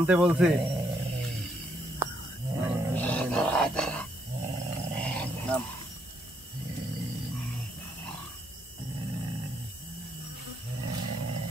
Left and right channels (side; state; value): both; normal; correlation 0.74